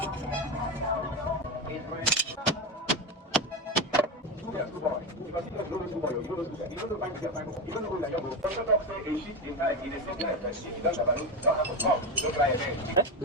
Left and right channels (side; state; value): both; normal; correlation 0.16